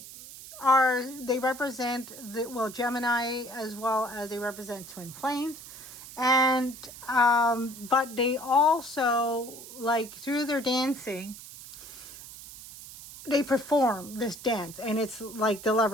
they represent Gemini, as well as they represent twin flames. And but they also, like, through their dancing, they perform this dance, and it's like the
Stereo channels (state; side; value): noise; right; hiss, 15 dB below the sound